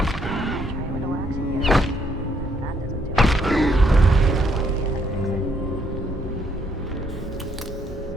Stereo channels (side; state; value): both; normal; correlation 0.70